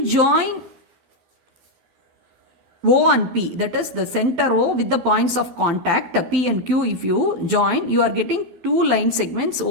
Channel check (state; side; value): late; left; 12 ms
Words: join O and P, that is the center O with the points of contact P and Q, if you join, you are getting two line segments